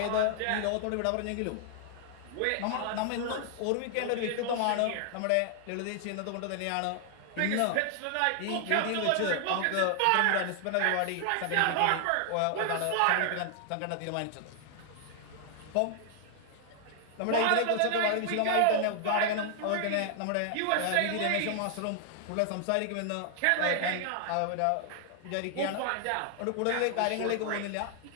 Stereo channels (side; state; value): both; different; correlation 0.00